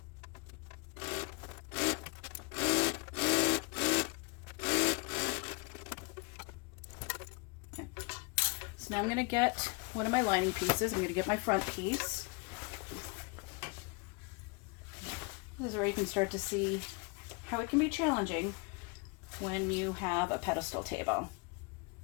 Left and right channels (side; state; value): right; quieter; 30.2 dB